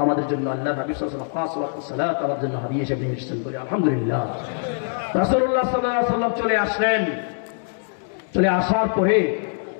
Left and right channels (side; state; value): right; silent; digital silence